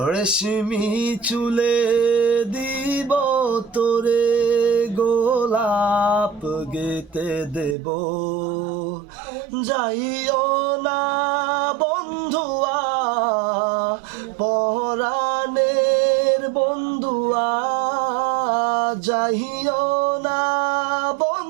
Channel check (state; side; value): drops out; left; at 7.8 s